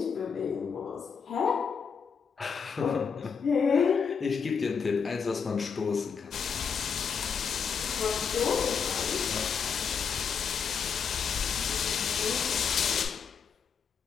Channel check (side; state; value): right; quieter; 6.4 dB